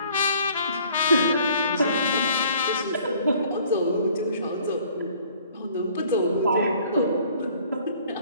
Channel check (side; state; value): both; inverted; correlation -0.56